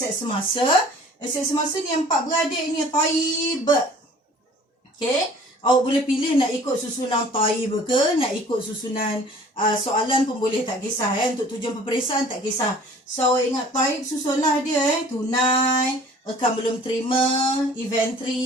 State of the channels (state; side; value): normal; both; correlation 0.50